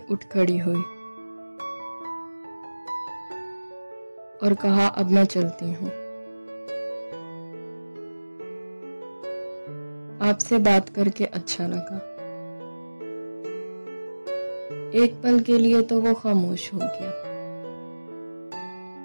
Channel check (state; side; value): inverted; both; correlation -1.00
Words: उठ खड़ी हुई और कहा, अब मैं चलती हूँ। आपसे बात करके अच्छा लगा। एक पल के लिए तो वो खामोश हो गया।